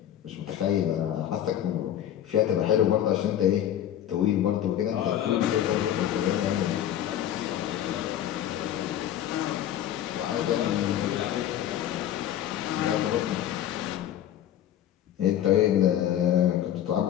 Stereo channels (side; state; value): right; quieter; 11.2 dB